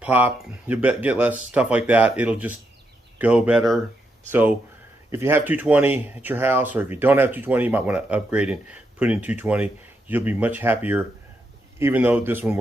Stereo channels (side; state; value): both; normal; correlation 0.81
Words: pop. You'll get less stuff like that. It'll just go better. So if you have 220 at your house, or if you don't have 220, you might want to upgrade and put in 220. You'll be much happier. Even though this one